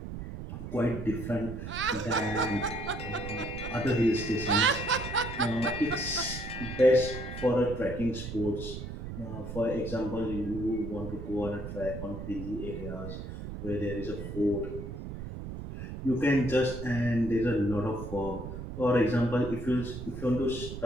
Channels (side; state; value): right; noise; rumble, 8 dB below the sound